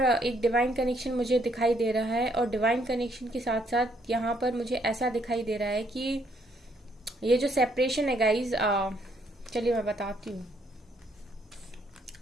एक डिवाइन कनेक्शन मुझे दिखाई दे रहा है और डिवाइन कनेक्शन के साथ साथ यहाँ पर मुझे ऐसा दिखाई दे रहा है कि ये जो सेपरेशन है गाइज, चलिए मैं बताती हूँ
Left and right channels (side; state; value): both; normal; correlation 0.70